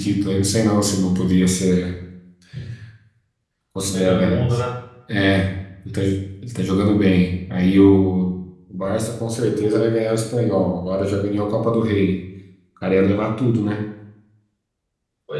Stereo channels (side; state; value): both; identical; correlation 1.00